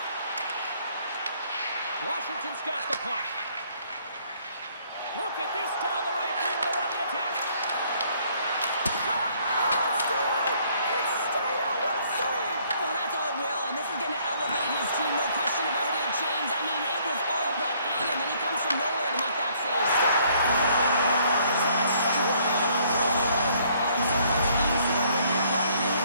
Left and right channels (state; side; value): inverted; both; correlation -0.64